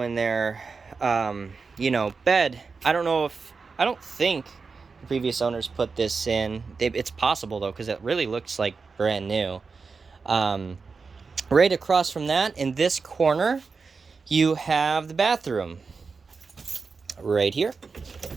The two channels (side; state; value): left; quieter; 4.8 dB